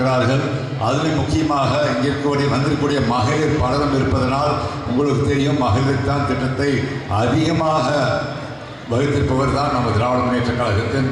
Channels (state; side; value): identical; both; correlation 1.00